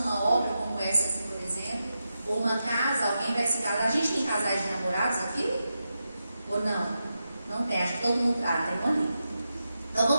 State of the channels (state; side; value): inverted; both; correlation -0.89